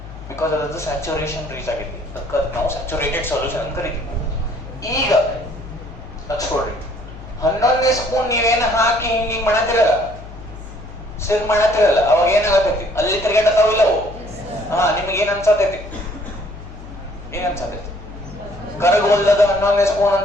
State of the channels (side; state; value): left; noise; hum, 14 dB below the sound